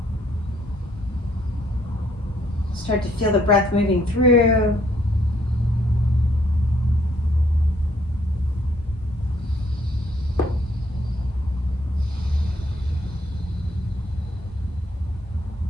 Start to feel the breath moving through.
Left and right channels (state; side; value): normal; both; correlation 0.68